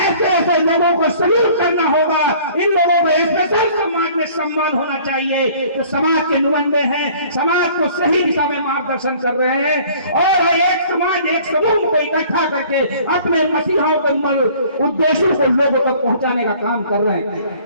लोगों को सल्यूट करना होगा। इन लोगों को स्पेशल समाज में सम्मान होना चाहिए, जो समाज के नुमाइंदे हैं, समाज को सही दिशा में मार्गदर्शन कर रहे हैं, और एक समाज, एक समूह को इकट्ठा करके अपने मसीहाओं के उद्देश्यों को लोगों तक पहुंचाने का काम कर रहे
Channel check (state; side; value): inverted; both; correlation -0.52